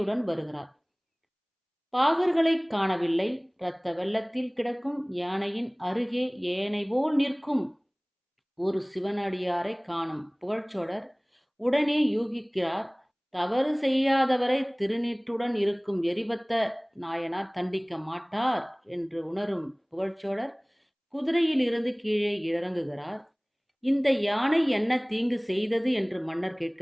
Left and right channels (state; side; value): identical; both; correlation 1.00